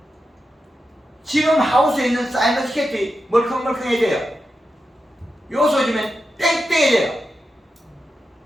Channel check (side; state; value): both; normal; correlation 0.89